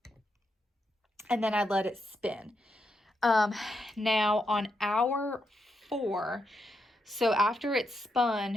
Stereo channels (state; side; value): normal; both; correlation 0.82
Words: and then I let it spin. Now on hour 4, so after it's